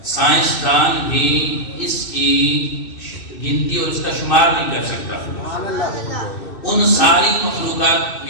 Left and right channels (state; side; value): late; right; 2.6 ms